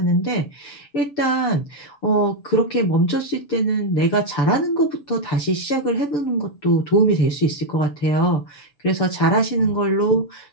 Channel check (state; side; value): late; right; 6.8 ms